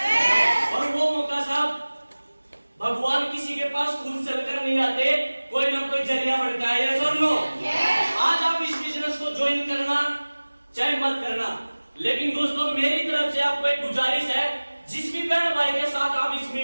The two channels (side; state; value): both; inverted; correlation -1.00